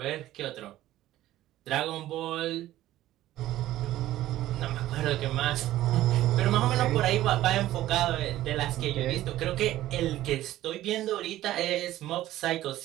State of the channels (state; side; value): quieter; left; 14.5 dB